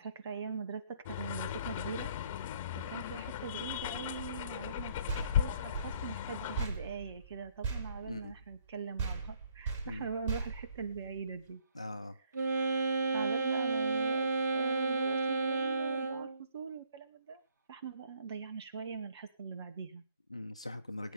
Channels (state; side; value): inverted; both; correlation -0.65